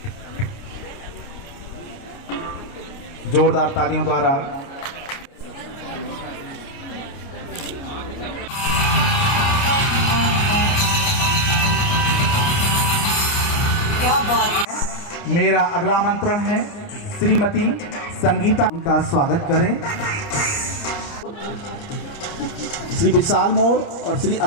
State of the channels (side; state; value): right; late; 29 ms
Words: जोरदार तालियों द्वारा मेरा अगला आमंत्रण है श्रीमती संगीता का स्वागत करें। श्री विशाल मोर और श्री